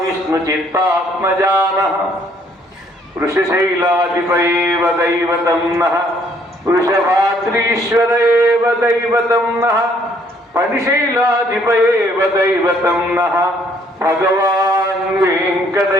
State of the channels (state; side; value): normal; both; correlation 0.65